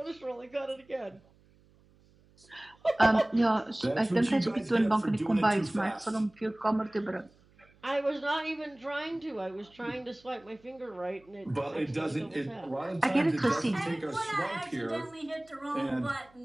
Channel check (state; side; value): noise; right; hum, 30 dB below the sound